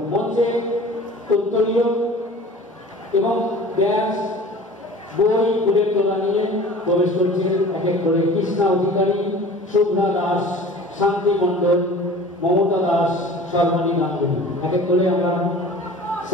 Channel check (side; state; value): both; normal; correlation 0.42